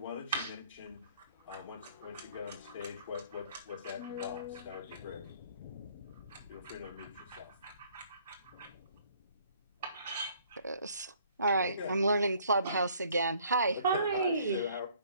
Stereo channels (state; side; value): inverted; both; correlation -0.60